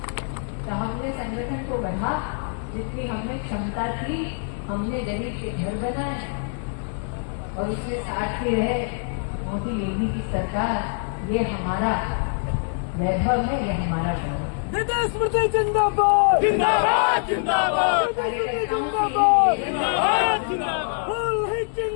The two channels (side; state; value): right; silent; digital silence